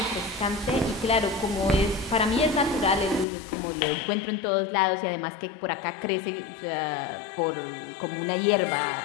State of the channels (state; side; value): drops out; right; at 3.2 s